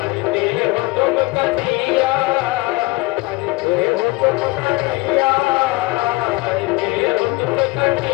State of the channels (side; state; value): right; quieter; 22.9 dB